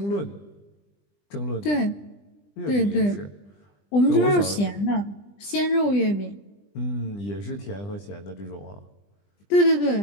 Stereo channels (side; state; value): right; late; 20 ms